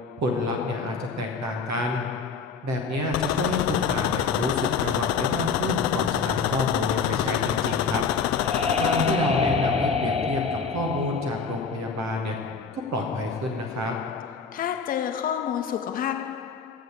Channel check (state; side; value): quieter; right; 5.0 dB